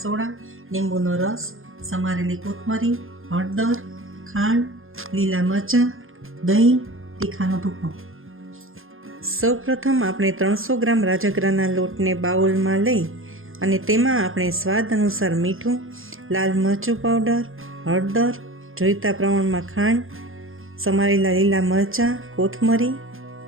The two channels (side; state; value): left; late; 0.60 ms